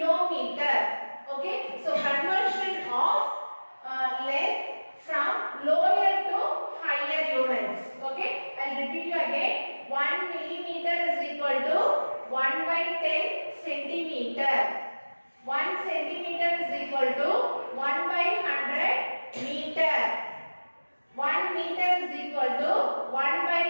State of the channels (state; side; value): inverted; both; correlation -1.00